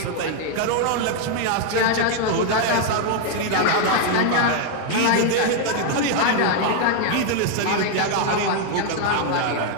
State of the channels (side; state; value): both; different; correlation 0.00